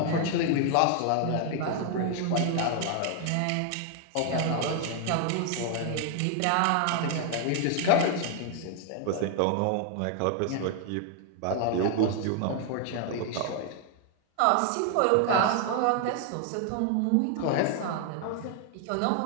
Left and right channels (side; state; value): both; different; correlation 0.00